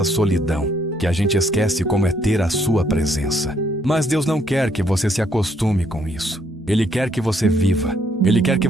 solidão, que a gente esquece como é ter a sua presença. Mas Deus não quer que você se acostume com isso. Ele quer que você viva. Ele quer que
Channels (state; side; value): normal; both; correlation 0.69